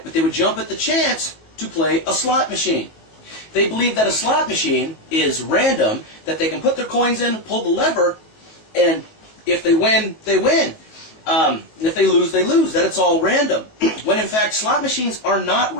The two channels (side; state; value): right; late; 19 ms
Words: but they would jump at the chance to play a slot machine. They believe that a slot machine is random, that they can put their coins in, pull the lever, and if they win, they win. And if they lose, that it's all random. When in fact, slot machines are not